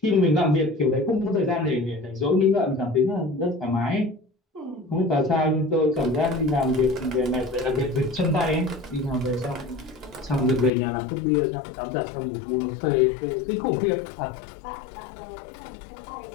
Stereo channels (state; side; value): drops out; right; at 10.7 s